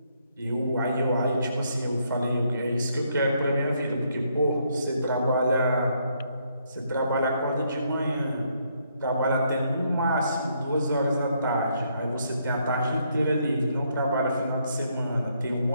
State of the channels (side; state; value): both; inverted; correlation -0.73